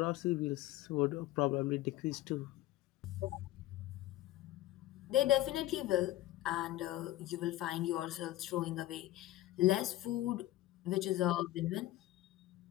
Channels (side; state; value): right; quieter; 15.6 dB